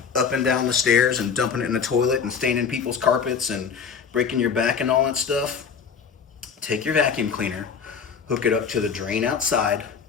up and down the stairs and dumping it in the toilet and staining people's carpets and breaking your back and all that stuff, take your vacuum cleaner, hook it up to the drain outside.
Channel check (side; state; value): right; quieter; 6.4 dB